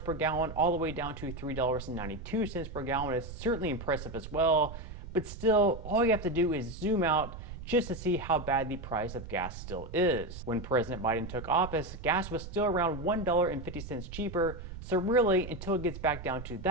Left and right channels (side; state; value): right; noise; rumble, 11 dB below the sound